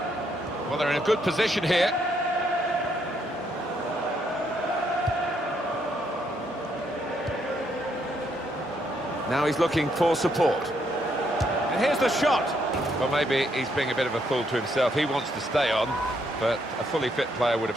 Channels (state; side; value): normal; both; correlation 0.74